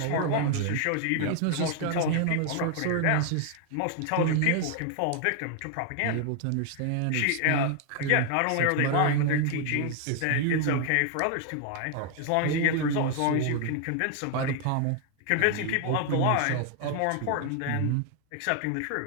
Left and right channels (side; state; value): both; different; correlation 0.00